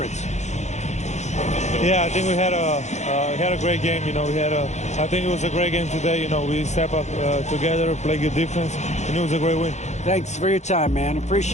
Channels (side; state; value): right; late; 0.33 ms